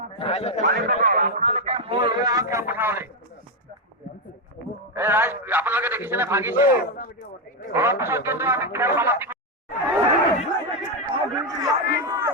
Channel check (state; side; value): normal; both; correlation 0.06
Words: আপোনালোকে দেখিছেনে ভাগিছে অলপ পিছত কিন্তু আমি খেল সমাপ্তি